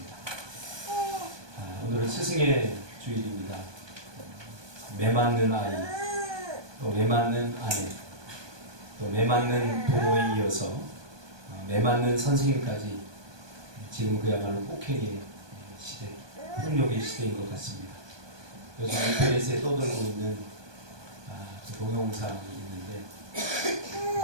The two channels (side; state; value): left; late; 1.2 ms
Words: 오늘은 스승의 주일입니다. 매맞는 아이, 또 매맞는 아내, 또 매맞는 부모에 이어서 매맞는 선생님까지 지금 그야말로 폭행의 시대, 폭력의 시대인 것 같습니다. 요즘 인터넷에 떠돌고 있는 그 동영상이 있는데